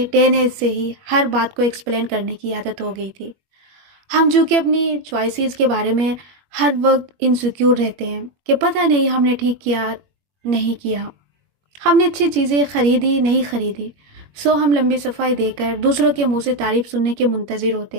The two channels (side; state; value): left; late; 21 ms